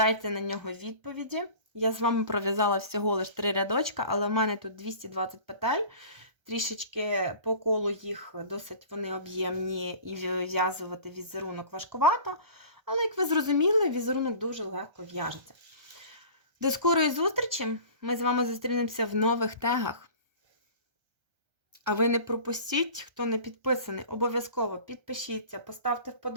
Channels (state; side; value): late; left; 1.3 ms